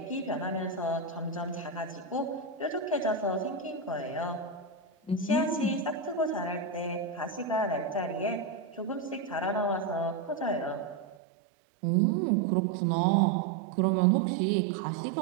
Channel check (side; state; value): left; drops out; at 11.2 s